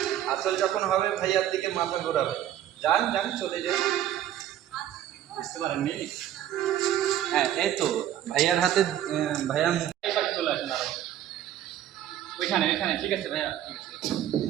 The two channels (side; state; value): left; quieter; 11.6 dB